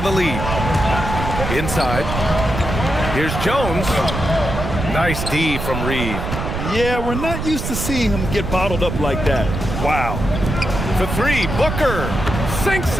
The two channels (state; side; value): noise; right; rumble, 4 dB below the sound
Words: a lead. Inside. Here's Jones. Nice D from Reid. Yeah, we're not used to seeing him get bottled up like that. Wow. For three, Booker sinks